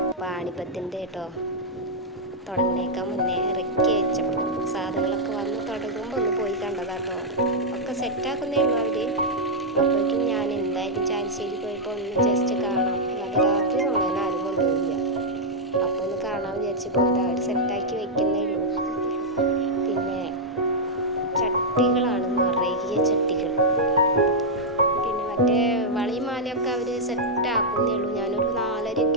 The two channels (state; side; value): normal; both; correlation -0.04